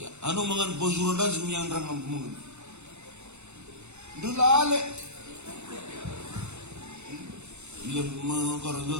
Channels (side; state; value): left; late; 0.82 ms